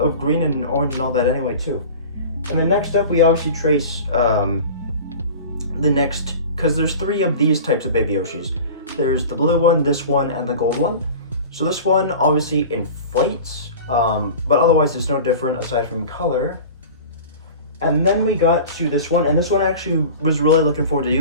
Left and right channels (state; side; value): inverted; both; correlation -0.37